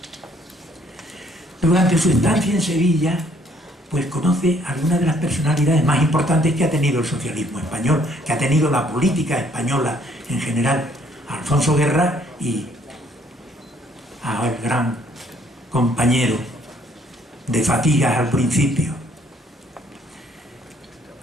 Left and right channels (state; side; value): normal; both; correlation 0.64